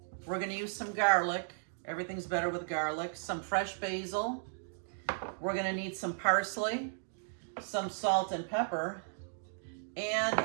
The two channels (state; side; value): silent; left; digital silence